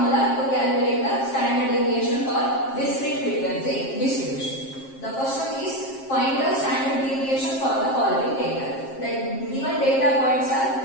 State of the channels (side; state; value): right; late; 7.5 ms